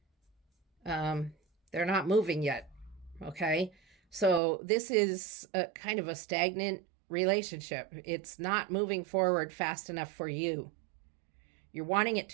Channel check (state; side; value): drops out; left; at 4.4 s